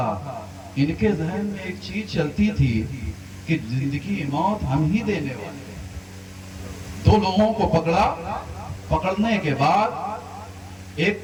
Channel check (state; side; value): identical; both; correlation 1.00